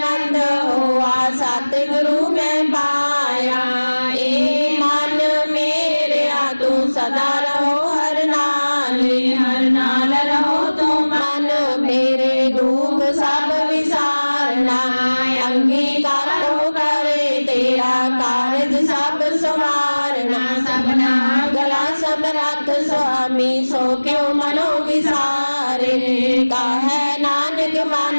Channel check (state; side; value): inverted; both; correlation -1.00